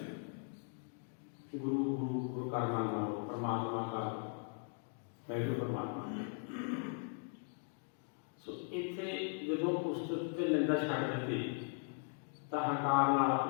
गुरु गुरु गुरु का मान लो, परमात्मा का वैगुरु परमात्मा। सो इत्थे जदों उस्तत ते निंदा छड्ड दित्ती तां हंकार नाल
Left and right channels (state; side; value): silent; right; 52 dB below the other